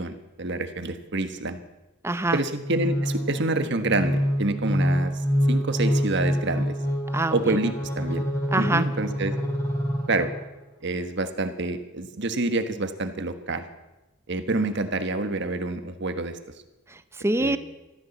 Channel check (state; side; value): normal; both; correlation 0.54